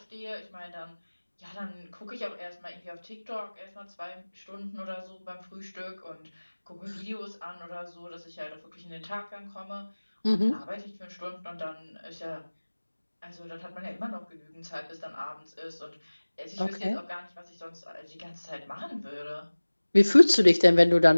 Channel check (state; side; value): inverted; both; correlation -1.00